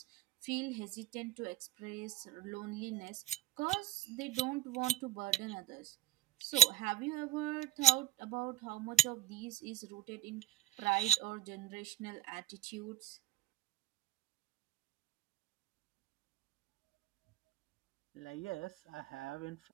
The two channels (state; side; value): quieter; left; 13.4 dB